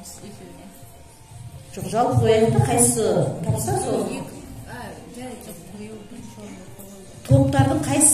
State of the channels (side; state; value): both; identical; correlation 1.00